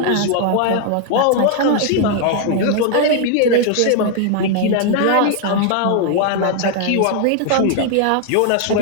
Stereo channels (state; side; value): different; both; correlation 0.00